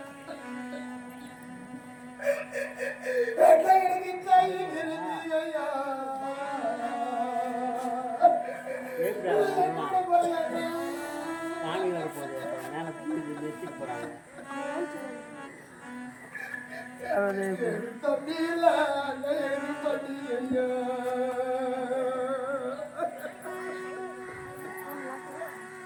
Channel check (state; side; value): identical; both; correlation 1.00